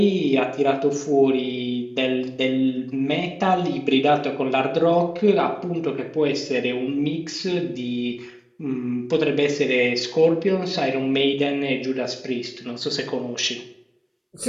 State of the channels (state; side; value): identical; both; correlation 1.00